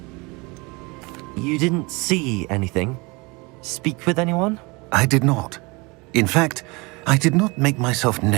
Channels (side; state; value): left; quieter; 26.7 dB